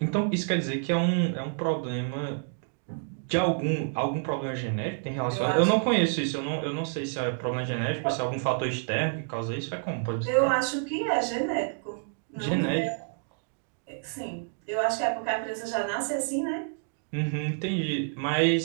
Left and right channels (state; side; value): silent; left; digital silence